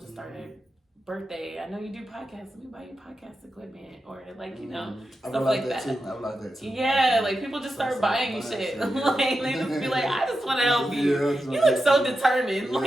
started, birthday, I know you do podcasts, let me buy you podcast equipment, or like, you know, stuff like that. I would like that too. Yeah, like people just start buying you shit. Like, they just be like, I just want to help you. You look so determined.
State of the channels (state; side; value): normal; both; correlation 0.89